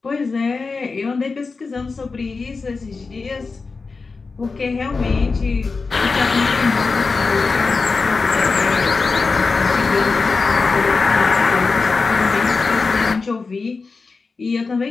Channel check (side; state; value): right; quieter; 4.3 dB